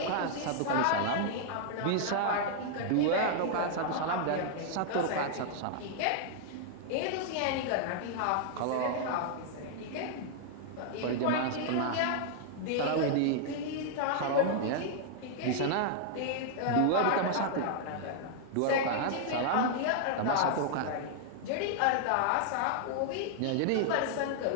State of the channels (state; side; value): different; both; correlation -0.01